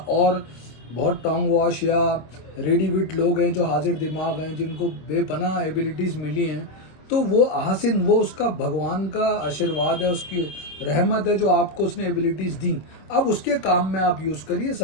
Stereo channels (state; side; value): late; right; 26 ms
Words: बहुत टोंग वॉश या रेडी विट लोग हैं जो हाजिर दिमाग हैं, जिनको बेपनाह एबिलिटीज मिली हैं, तो वो आहसिन, वो उसका भगवान का आशीर्वाद है, उसकी रहमत है जो आपको उसने एबिलिटीज दी। अब उसके काम में आप यूज करिए,